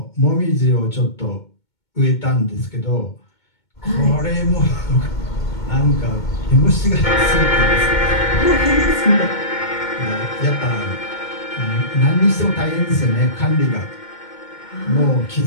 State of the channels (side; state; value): right; late; 2.2 ms